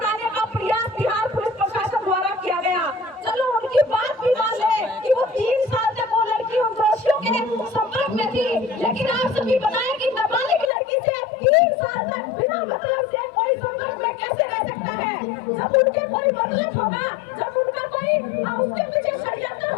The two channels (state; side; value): drops out; right; at 10.7 s